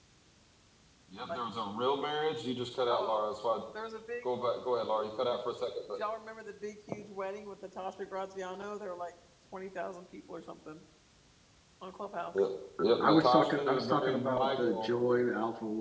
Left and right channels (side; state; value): both; identical; correlation 1.00